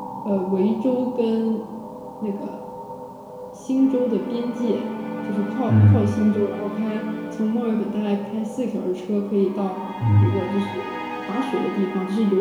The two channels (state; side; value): identical; both; correlation 1.00